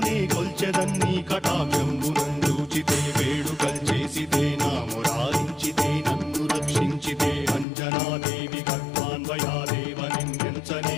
కొల్చెదన్నీ కటాక్షంబునందూచితే వేడుకల్ చేసితే నా మురారించితే నన్ను రక్షించితే అంజనాదేవి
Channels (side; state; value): right; drops out; at 7.7 s